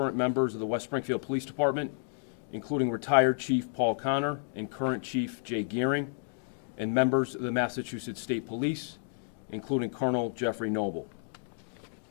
members of the West Springfield Police Department, including retired Chief Paul Connor and current Chief Jay Gearing, and members of the Massachusetts State Police, including Colonel Jeffrey Noble.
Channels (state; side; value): silent; right; digital silence